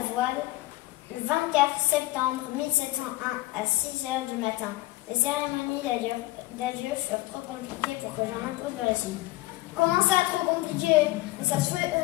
voile le 24 septembre 1701 à 6 heures du matin. Les cérémonies d'adieu furent trop compliquées pour que j'en impose le récit. Comment ça, trop compliqué? Mais ça se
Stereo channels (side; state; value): right; quieter; 19.1 dB